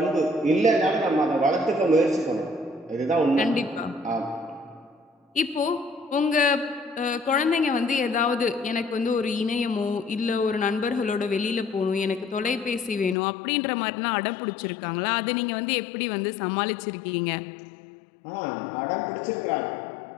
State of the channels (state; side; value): drops out; right; at 13.2 s